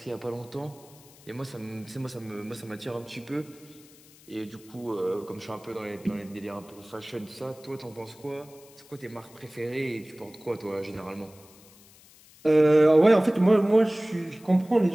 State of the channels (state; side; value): noise; left; hiss, 25 dB below the sound